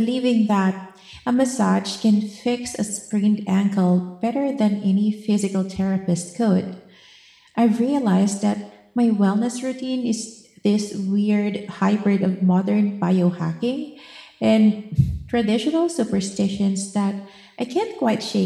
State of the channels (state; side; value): identical; both; correlation 1.00